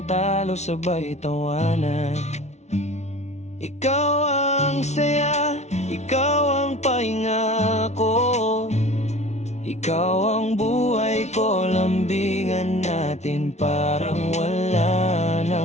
talo, sabay tawanan. Ikaw ang saya, ikaw ang pahinga ko, ikaw ang buhay ko, lambingan natin parang wala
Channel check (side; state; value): right; late; 0.32 ms